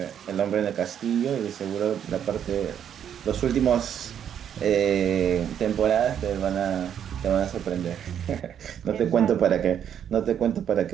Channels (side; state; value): left; quieter; 9.1 dB